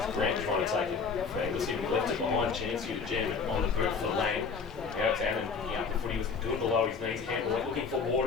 Grant trying to take it for Anglesea. He left it behind, chance here to jam it on the boot for Lang. Now it's Annan picking up the footy, was good below his knees. Campbell looking for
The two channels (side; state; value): right; quieter; 5.3 dB